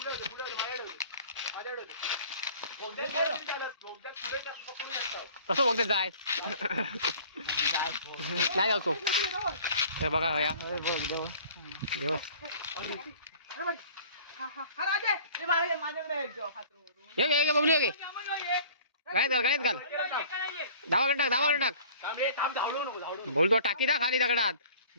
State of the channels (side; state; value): both; inverted; correlation -0.49